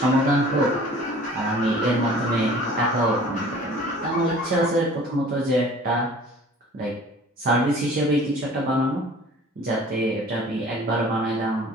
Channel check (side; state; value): both; normal; correlation 0.48